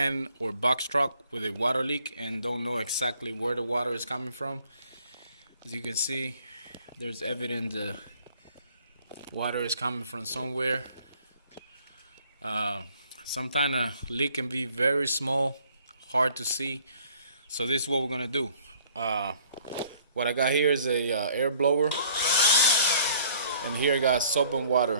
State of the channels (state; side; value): inverted; both; correlation -0.58